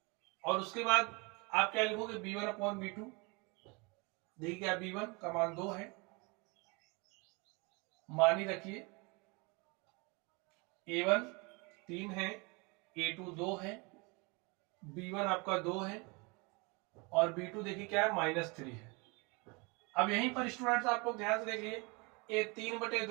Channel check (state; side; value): quieter; left; 28.8 dB